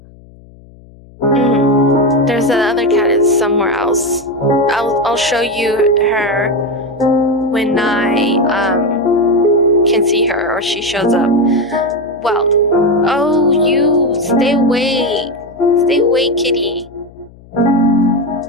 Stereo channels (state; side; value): noise; left; hum, 24 dB below the sound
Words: There's the other cat is somewhere else. I'll show you her when I can see her or she shows up. Well, oh, you stay away, kitty.